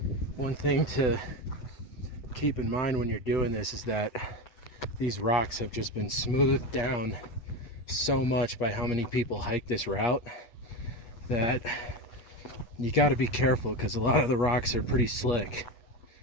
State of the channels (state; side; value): late; right; 8.5 ms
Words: one thing to keep in mind when you're doing this is that these rocks have just been smoothed down so much by how many people hike this route that you got to be careful, because a lot of the rocks are pretty slick.